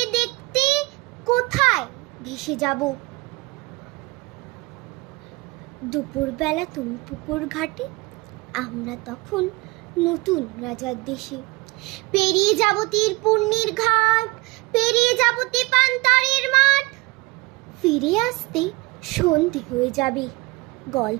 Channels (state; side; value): quieter; left; 23.8 dB